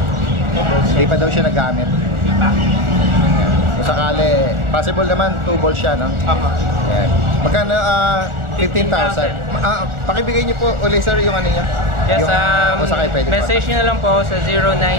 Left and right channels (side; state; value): left; late; 1.4 ms